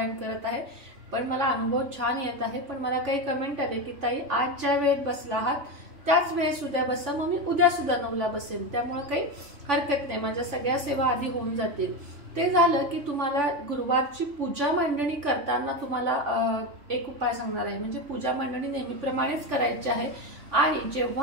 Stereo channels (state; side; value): late; left; 3.5 ms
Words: करत आहे पण मला अनुभव छान येत आहे, पण मला काही कमेंट आले की ताई आज ज्या वेळेत बसला आहात त्याच वेळेस उद्या बसा, मग मी उद्या सुद्धा 9ला बसेन, त्यामुळे काही हरकत नाही, माझ्या सगळ्या सेवा आधी होऊन जातील। ते झालं की तुम्हाला गुरुवारची पूजा मांडणी करताना तुम्हाला एक उपाय सांगणार आहे। म्हणजे पूजा मांडणी नेहमीप्रमाणेच करायची आहे आणि